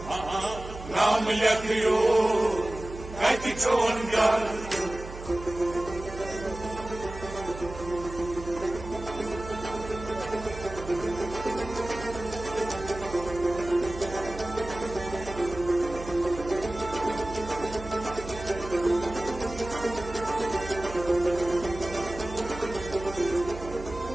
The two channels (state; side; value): noise; right; hum, 12 dB below the sound